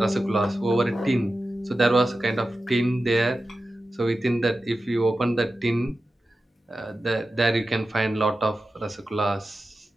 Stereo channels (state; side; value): normal; both; correlation 0.93